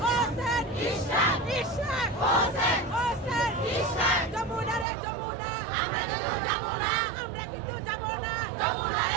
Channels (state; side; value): drops out; left; at 4.9 s